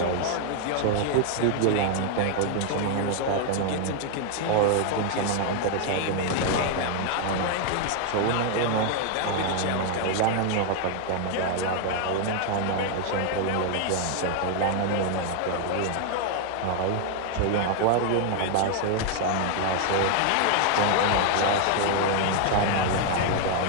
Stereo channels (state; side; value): different; both; correlation 0.00